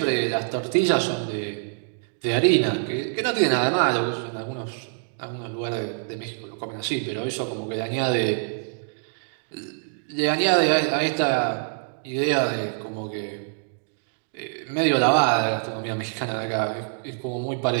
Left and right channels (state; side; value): silent; left; digital silence